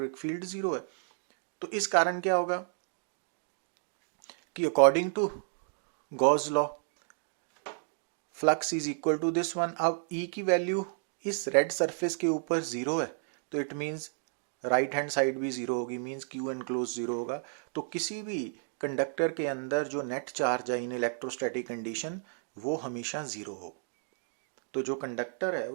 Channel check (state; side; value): silent; left; digital silence